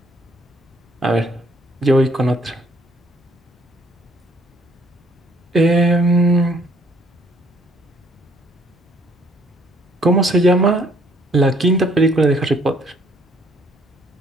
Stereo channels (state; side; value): normal; both; correlation 0.63